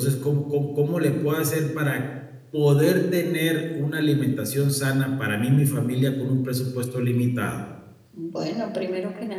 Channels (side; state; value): both; identical; correlation 1.00